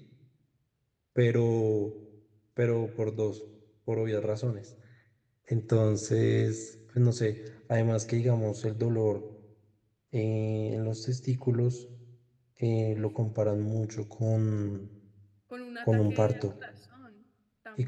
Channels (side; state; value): both; identical; correlation 1.00